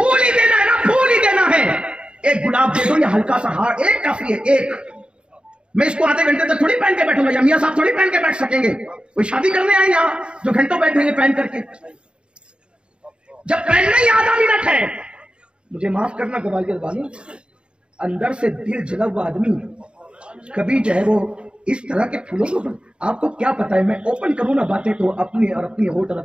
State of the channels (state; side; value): late; left; 0.053 ms